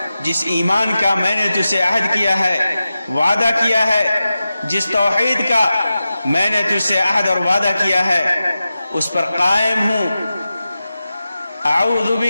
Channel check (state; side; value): inverted; both; correlation -0.93